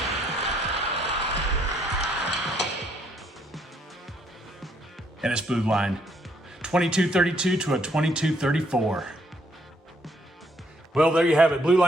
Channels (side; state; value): both; normal; correlation 0.70